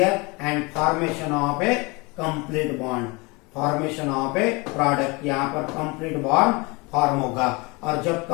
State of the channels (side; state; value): right; quieter; 26.7 dB